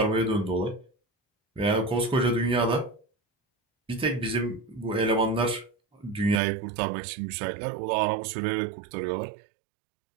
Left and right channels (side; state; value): left; drops out; at 6.4 s